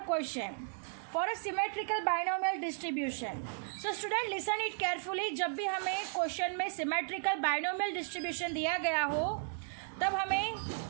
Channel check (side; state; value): left; silent; digital silence